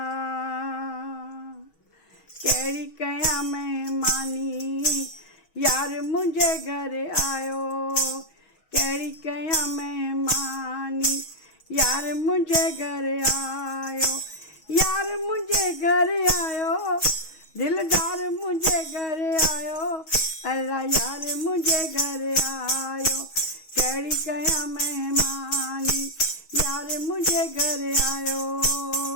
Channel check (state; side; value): late; right; 6.3 ms